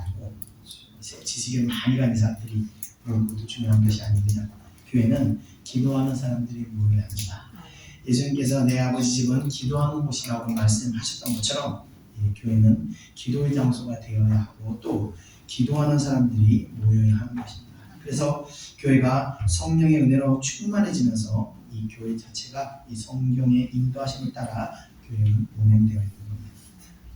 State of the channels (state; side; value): identical; both; correlation 1.00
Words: 지식에 많이 가는 사람들이 모이는 것도 중요한 것이 아니거든요. 교회는 기도하는 사람들이 모여야 합니다. 예수님께서 내 아버지 집은 기도하는 곳이라고 말씀하셨던 것처럼 교회는 기도의 장소가 되어야 하고 또 기도하는 사람들이 모여야 하는 것입니다. 그래서 교회가 성령의 은혜로 충만해지면서 이 교회 자체가 이 성경의 인도하심을 따라 교회는 운행되어 있는 겁니다.